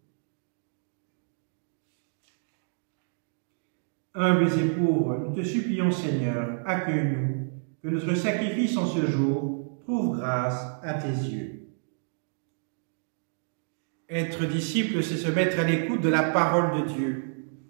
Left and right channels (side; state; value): left; silent; digital silence